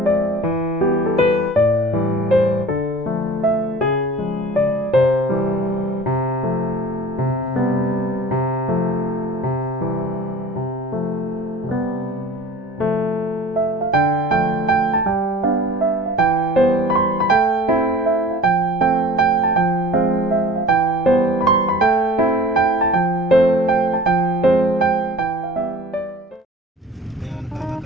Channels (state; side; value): normal; both; correlation 0.43